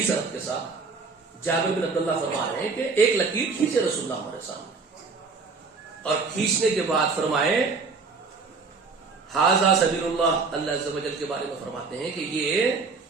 سند کے ساتھ. جابر بن عبداللہ فرما رہے ہیں کہ ایک لکیر کھینچے رسول اللہ ہمارے سامنے، اور کھینچنے کے بعد فرمائے ھذا سبیل اللہ. اللہ عز و جل کے بارے میں فرماتے ہیں کہ یہ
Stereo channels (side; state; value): left; quieter; 4.5 dB